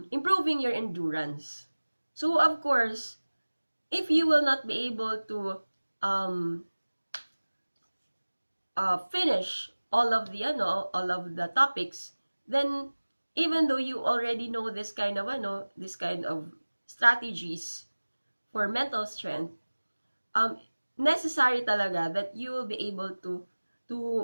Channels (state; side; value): inverted; both; correlation -1.00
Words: improving your endurance. So of course, if you will not be able to finish all of the topics, then even though you already know this kind of strategies for mental strength, necessary talaga that you will be able